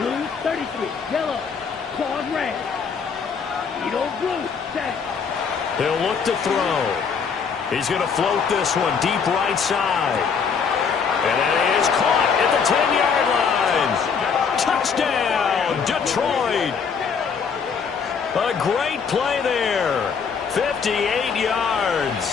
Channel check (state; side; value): quieter; right; 6.1 dB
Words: 33. Yellow, claws red. Edo blue, set. He'll look to throw. He's going to float this one deep right side. And that is caught at the 10-yard line. Touchdown, Detroit. A great play there. 58